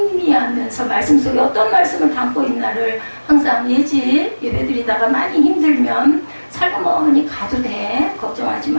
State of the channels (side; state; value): both; inverted; correlation -1.00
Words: 말씀 속에 어떤 말씀을 담고 있나를 항상 예배드리다가 많이 힘들면 살그머니 가도 돼. 걱정하지